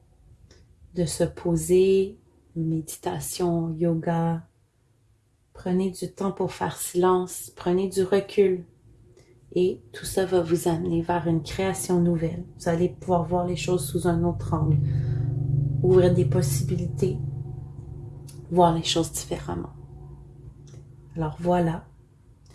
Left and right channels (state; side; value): identical; both; correlation 1.00